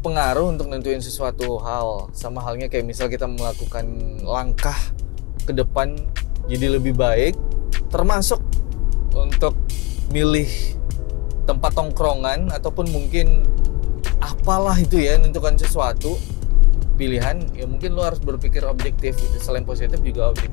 untuk nentuin sesuatu hal. Sama halnya kayak misal kita melakukan langkah ke depan jadi lebih baik, termasuk untuk milih tempat tongkrongan ataupun mungkin apalah itu ya, menentukan sesuatu pilihan, ya mungkin lo harus berpikir objektif gitu. Selain positif juga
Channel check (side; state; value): right; quieter; 22.9 dB